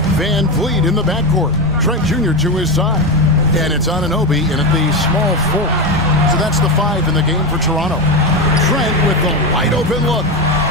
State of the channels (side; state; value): both; normal; correlation 0.15